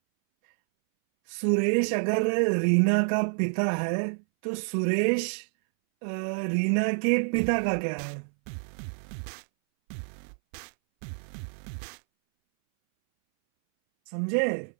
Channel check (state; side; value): silent; left; 60 dB below the other